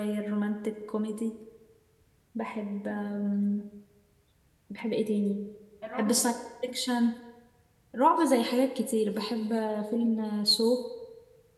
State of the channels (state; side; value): identical; both; correlation 1.00